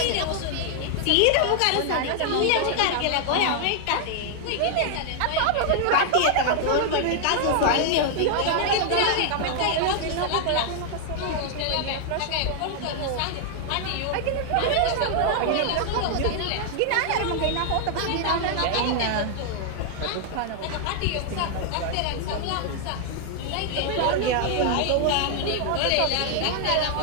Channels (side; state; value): both; different; correlation 0.00